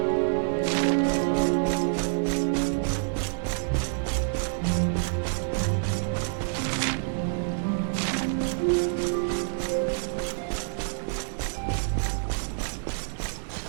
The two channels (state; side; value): silent; left; 60 dB below the other